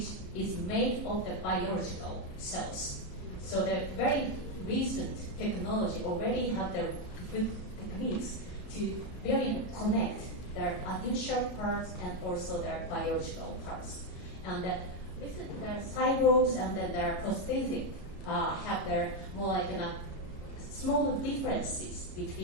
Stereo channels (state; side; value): late; right; 33 ms